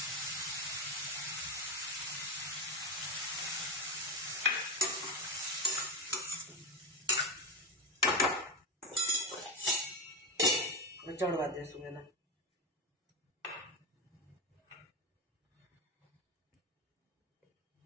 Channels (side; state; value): both; normal; correlation 0.17